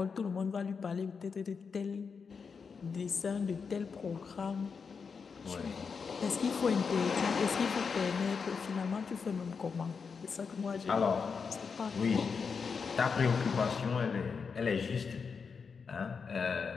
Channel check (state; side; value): quieter; right; 5.6 dB